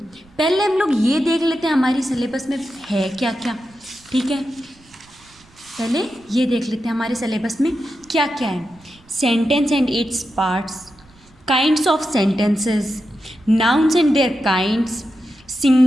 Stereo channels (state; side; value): noise; right; rumble, 28 dB below the sound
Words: पहले हम लोग ये देख लेते हैं हमारी सिलेबस में है क्या क्या। ठीक है, पहले ये देख लेते हैं हमारे सिलेबस में क्या क्या है। Sentence and its parts, kinds of sentences, nouns and their kinds,